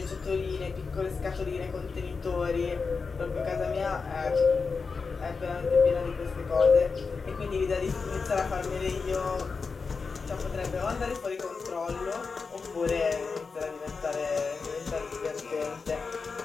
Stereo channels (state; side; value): quieter; right; 4.8 dB